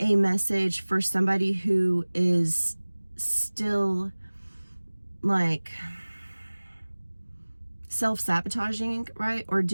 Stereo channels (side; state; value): both; inverted; correlation -1.00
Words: message for somebody who is still like self-sabotaging, right? Or